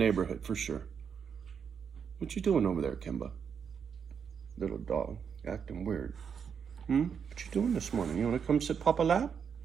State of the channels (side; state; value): left; quieter; 7.0 dB